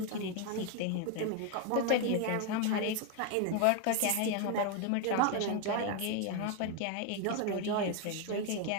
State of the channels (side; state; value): both; different; correlation 0.01